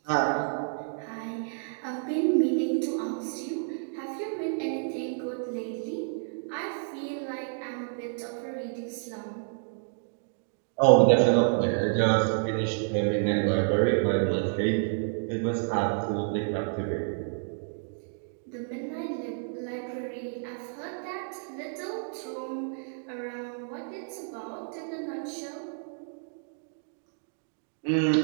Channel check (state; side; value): silent; left; digital silence